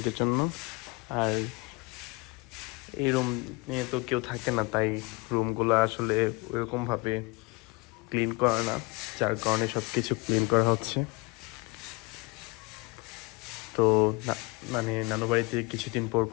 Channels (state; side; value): quieter; right; 27.2 dB